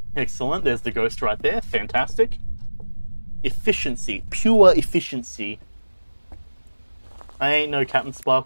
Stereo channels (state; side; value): inverted; both; correlation -1.00